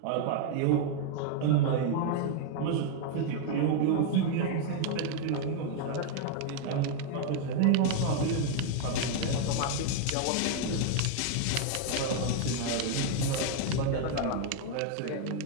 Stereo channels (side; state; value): both; different; correlation 0.00